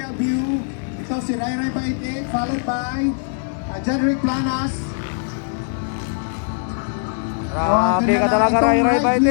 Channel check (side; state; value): right; silent; digital silence